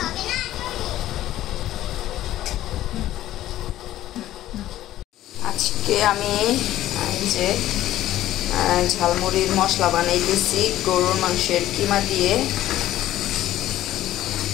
আজকে আমি যে ঝালমুড়ির মশলা বানাইতেছি গরুর মাংসের কিমা দিয়ে।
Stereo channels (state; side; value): quieter; right; 13.9 dB